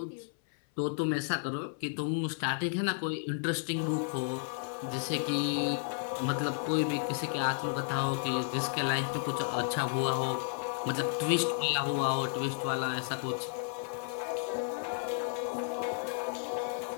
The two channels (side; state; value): right; silent; 56 dB below the other